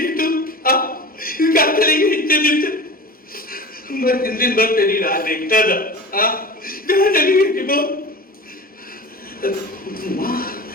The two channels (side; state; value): both; normal; correlation 0.34